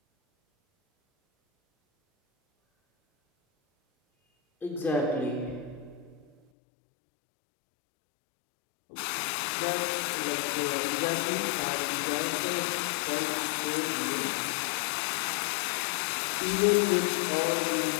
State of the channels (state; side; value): drops out; right; at 6.4 s